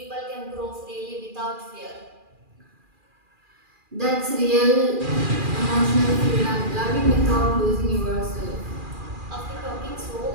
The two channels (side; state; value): left; late; 2.4 ms